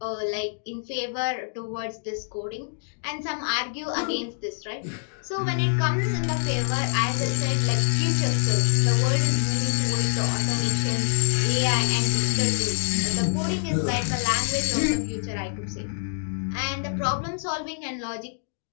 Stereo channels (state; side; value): silent; right; digital silence